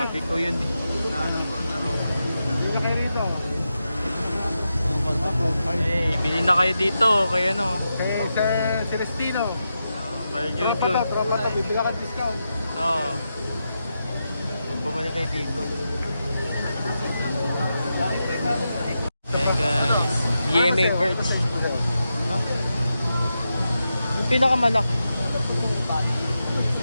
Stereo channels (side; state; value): both; inverted; correlation -0.88